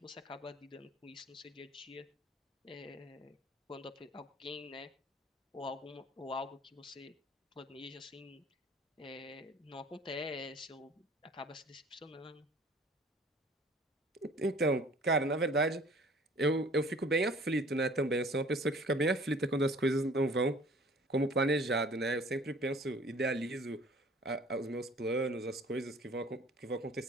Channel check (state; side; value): normal; both; correlation 0.51